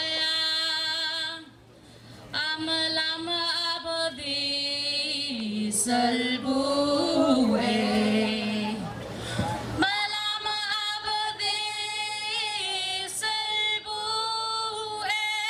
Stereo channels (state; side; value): identical; both; correlation 1.00